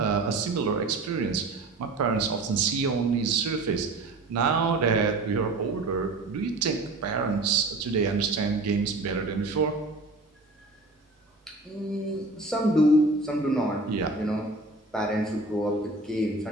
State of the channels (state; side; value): quieter; left; 3.1 dB